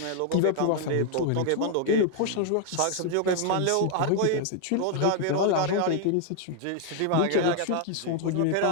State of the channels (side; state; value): both; different; correlation 0.00